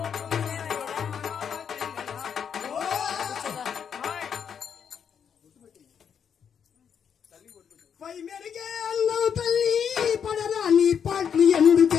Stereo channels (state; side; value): quieter; right; 7.6 dB